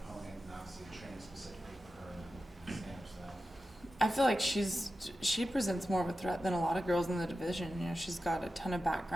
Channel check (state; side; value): normal; both; correlation 0.92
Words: opponent, and obviously training specifically for her and stand-up style? I feel like she presents more of a threat than a lot of girls in the division. You know, she's got a ton of